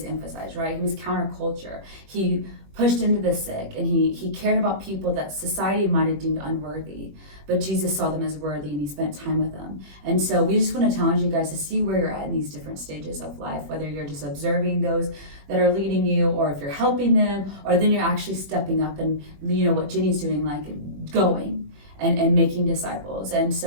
emphasize, right? He was counterculture. He pushed into the sick, and he cared about people that society might have deemed unworthy, but Jesus saw them as worthy, and he spent time with them. And so we just want to challenge you guys to see where you're at in these different stages of life, whether you're just observing those that are leading you, or if you're helping them, or then you're actually stepping up and what Jenny's doing, like going and making disciples. And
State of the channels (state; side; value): late; left; 21 ms